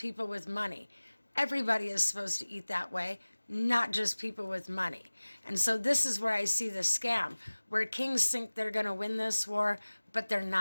with money. Everybody is supposed to eat that way, not just people with money. And so this is where I see the scam, where kings think they're going to win this war, but they're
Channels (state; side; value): inverted; both; correlation -1.00